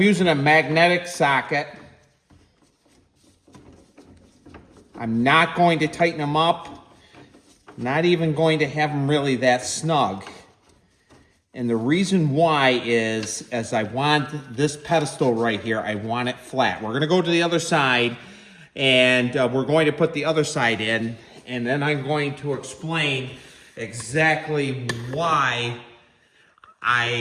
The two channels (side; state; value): both; identical; correlation 1.00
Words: a magnetic socket. I'm not going to tighten them up. Not even going to have them really that snug. And the reason why is, as I want this pedestal right here, I want it flat. We're gonna go to the other side, and we're going to put the other side in, and then I'm going to explain exactly why